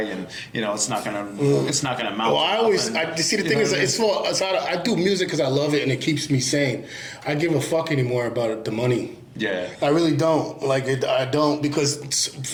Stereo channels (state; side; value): identical; both; correlation 1.00